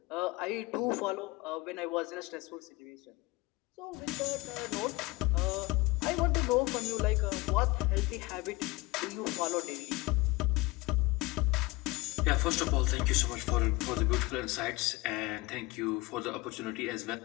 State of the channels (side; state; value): right; quieter; 21.6 dB